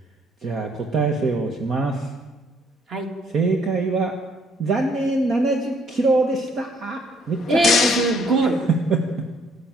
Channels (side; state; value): both; normal; correlation 0.64